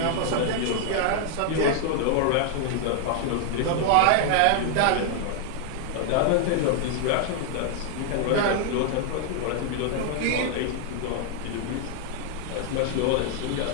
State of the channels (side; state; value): both; different; correlation 0.00